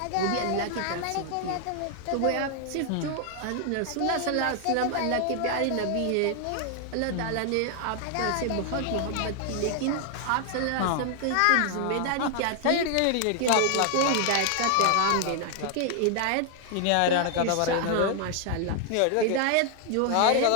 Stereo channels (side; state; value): both; different; correlation 0.00